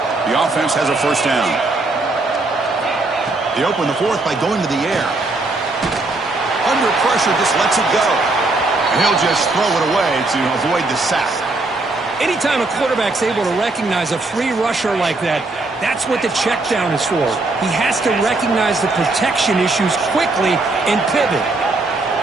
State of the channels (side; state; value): left; quieter; 3.2 dB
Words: The offense has a first down. They open the fourth by going to the air. Under pressure, just lets it go. And he'll just throw it away to avoid the sack. Anytime a quarterback's able to recognize a free rusher like that, that's what the check down is for. He has to recognize the protection issues quickly and pivot.